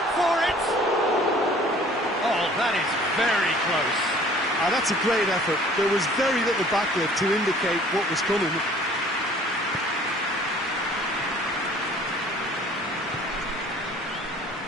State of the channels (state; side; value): normal; both; correlation 0.52